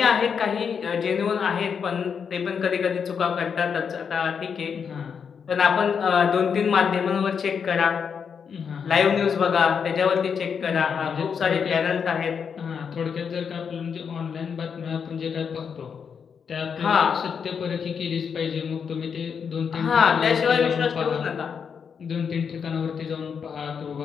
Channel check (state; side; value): quieter; right; 6.7 dB